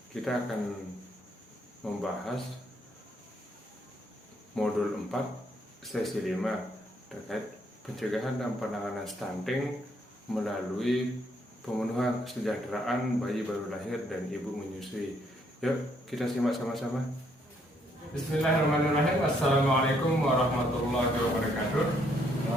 kita akan membahas modul 4 sesi 5 terkait pencegahan dan penanganan stunting melalui pemenuhan kesejahteraan bayi baru lahir dan ibu menyusui. Yuk kita simak sama-sama. Bismillahirrahmanirrahim. Assalamualaikum warahmatullahi wabarakatuh.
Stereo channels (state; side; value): normal; both; correlation 0.70